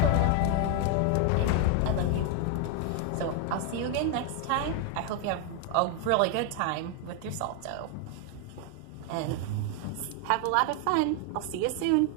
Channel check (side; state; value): both; different; correlation 0.01